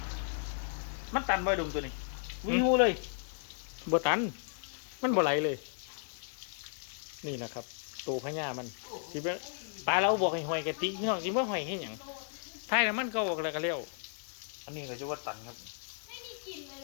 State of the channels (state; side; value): silent; right; digital silence